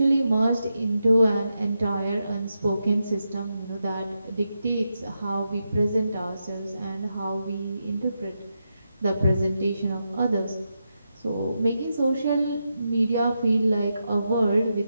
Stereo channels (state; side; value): inverted; both; correlation -0.86